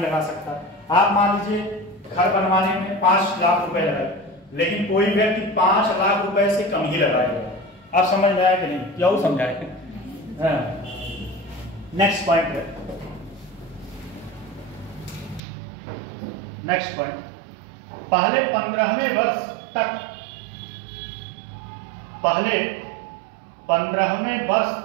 लगा सकता। आप मान लीजिए घर बनवाने में 5 लाख रुपए लगाए, लेकिन कोई व्यक्ति 5 लाख रुपए से कम ही लगाएगा। आप समझ में आया कि नहीं? क्या समझाए? नेक्स्ट पॉइंट है, नेक्स्ट पॉइंट, पहले 15वें वर्ष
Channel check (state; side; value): drops out; left; at 15.4 s